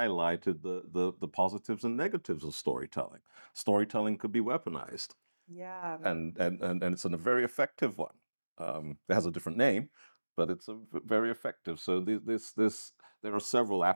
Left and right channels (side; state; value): both; inverted; correlation -1.00